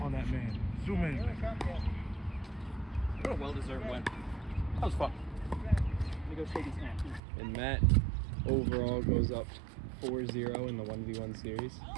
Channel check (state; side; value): drops out; left; at 7.2 s